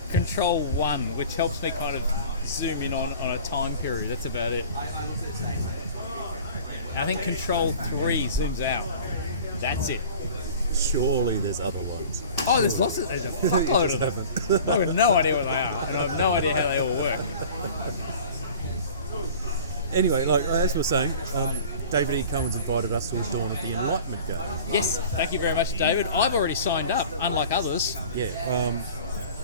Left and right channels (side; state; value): both; inverted; correlation -0.43